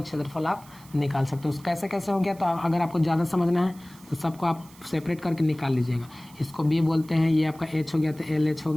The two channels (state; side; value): noise; right; hiss, 24 dB below the sound